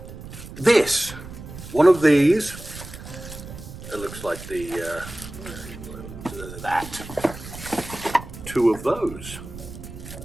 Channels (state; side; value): noise; right; rumble, 13 dB below the sound